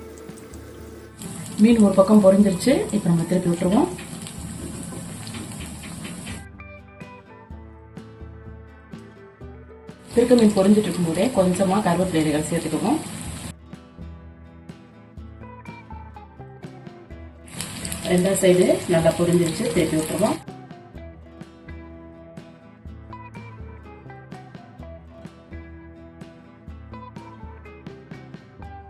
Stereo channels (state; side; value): identical; both; correlation 1.00